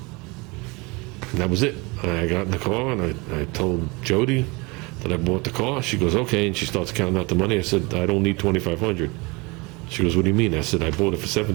And that was it. I got in the car, and I told Jody that I bought the car. She goes, okay, and she starts counting out the money. I said, I don't need $2,500. She goes, what do you mean? I said, I bought it for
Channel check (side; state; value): left; quieter; 26.2 dB